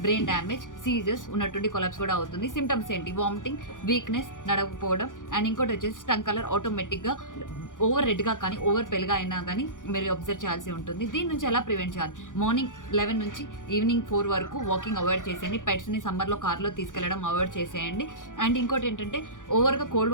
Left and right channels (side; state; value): right; late; 0.88 ms